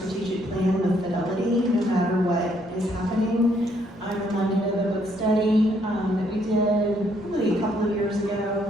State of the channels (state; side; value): noise; left; rumble, 27 dB below the sound